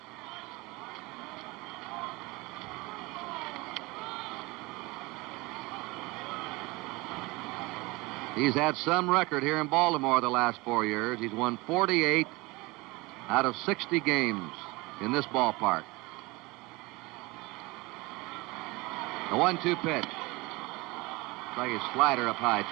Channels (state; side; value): quieter; left; 23.3 dB